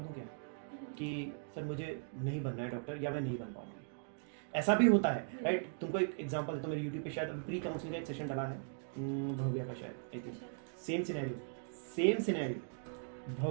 क्या कि सर मुझे नहीं बनना है डॉक्टर या मैं नहीं बन पाऊंगा। ऐसा भी होता है, राइट? तुमको एक एग्जांपल तो मेरे यूट्यूब पे शायद प्री काउंसलिंग का एक सेशन डाला है, भव्या का शायद, सेम सिनेरियो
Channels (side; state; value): left; silent; digital silence